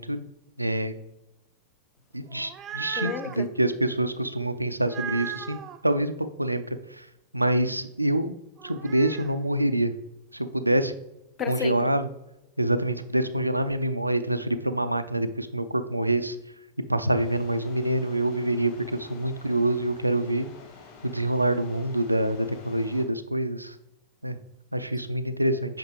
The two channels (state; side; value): inverted; both; correlation -0.77